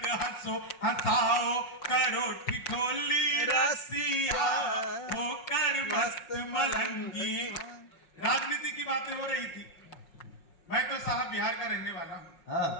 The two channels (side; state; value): right; late; 5.5 ms